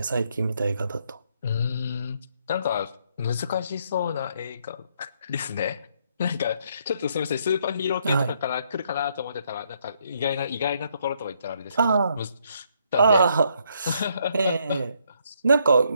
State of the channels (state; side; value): inverted; both; correlation -0.72